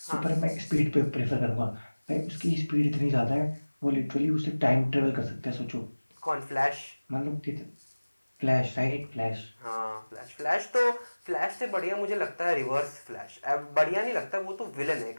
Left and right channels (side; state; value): both; inverted; correlation -1.00